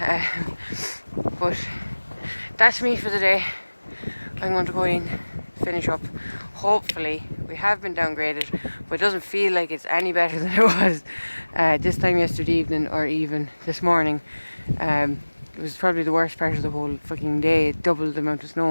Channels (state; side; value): inverted; both; correlation -1.00